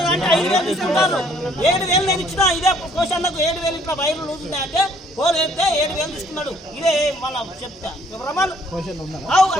అంటే 5,000 తీసుకుంటారు. 7,000 నేను ఇచ్చినా ఇదే క్వశ్చన్లకు 7,000 ఇట్లా వైరు లూజ్ ఉంది అంటే పోలు వేస్తే 7,000 తీసుకున్నాడు. ఇదే మళ్ళీ చెప్తా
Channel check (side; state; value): both; normal; correlation 0.62